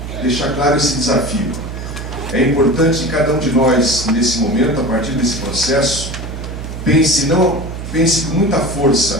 deixar claro esse desafio. É importante que cada um de nós, nesse momento, a partir desse processo, pense com muita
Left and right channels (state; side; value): noise; right; hum, 8 dB below the sound